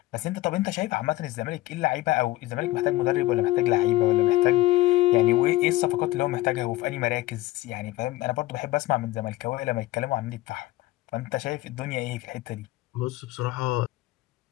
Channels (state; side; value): quieter; right; 17.5 dB